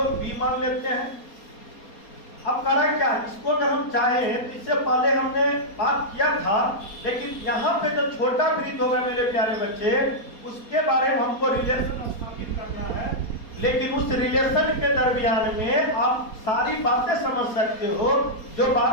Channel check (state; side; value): late; right; 4.3 ms